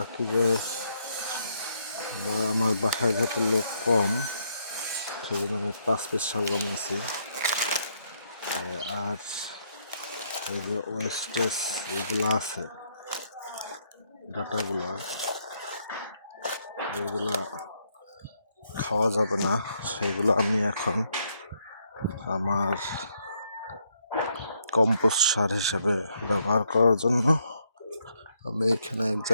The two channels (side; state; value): both; inverted; correlation -0.74